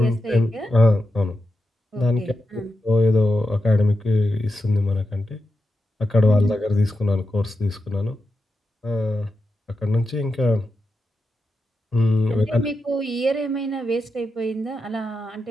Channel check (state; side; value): normal; both; correlation 0.88